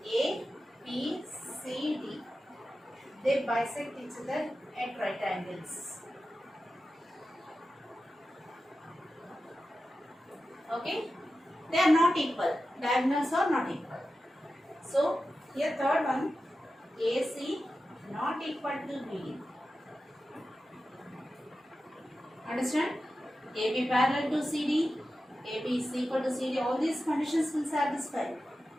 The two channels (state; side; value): normal; both; correlation 0.93